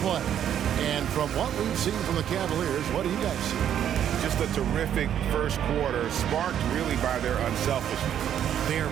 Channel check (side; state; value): left; quieter; 9.9 dB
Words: And from what we've seen from the Cavaliers, what do you guys see? Just a terrific first quarter, sparked really by their unselfishness. They are